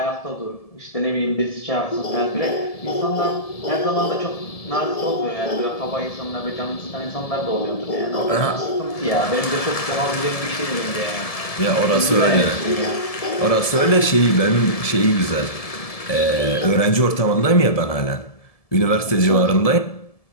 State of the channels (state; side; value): late; right; 1.7 ms